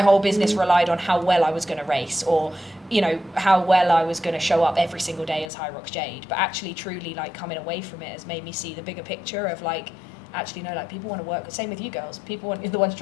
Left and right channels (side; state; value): right; drops out; at 5.5 s